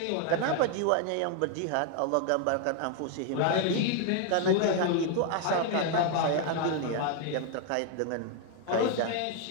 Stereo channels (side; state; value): both; different; correlation 0.00